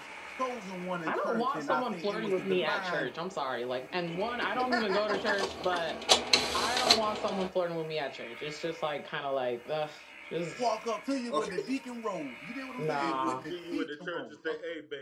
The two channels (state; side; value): identical; both; correlation 1.00